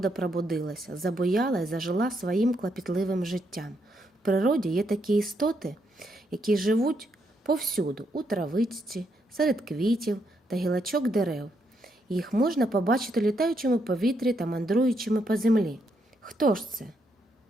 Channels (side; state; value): both; normal; correlation 0.77